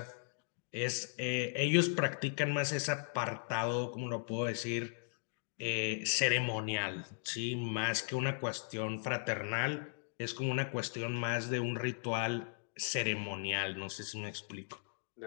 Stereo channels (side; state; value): right; silent; 53 dB below the other